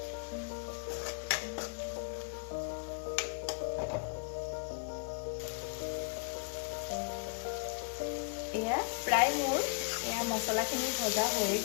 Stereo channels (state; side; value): quieter; right; 35.3 dB